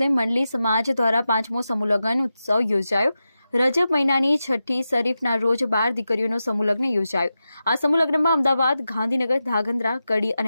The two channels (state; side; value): inverted; both; correlation -0.91